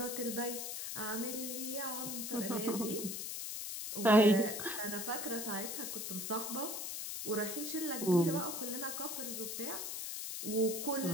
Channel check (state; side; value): noise; left; hiss, 4 dB below the sound